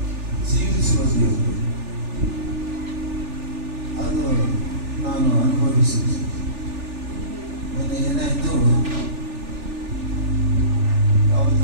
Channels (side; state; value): left; late; 3.4 ms